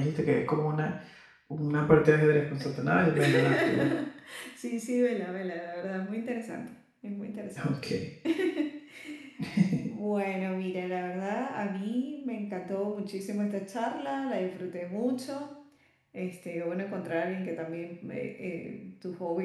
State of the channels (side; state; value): both; identical; correlation 1.00